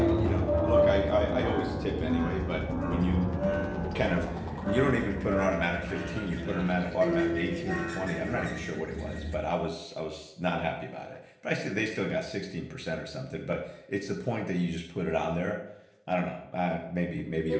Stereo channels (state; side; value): identical; both; correlation 1.00